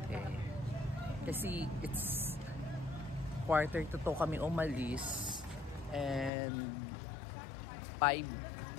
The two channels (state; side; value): drops out; right; at 6.3 s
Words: Kasi it's 1:45 kami umalis. And 5